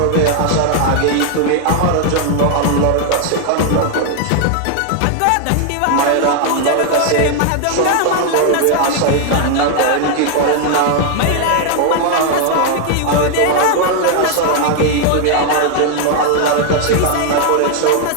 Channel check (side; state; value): both; different; correlation 0.00